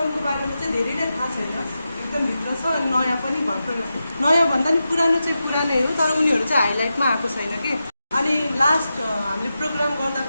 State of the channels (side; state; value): both; inverted; correlation -0.90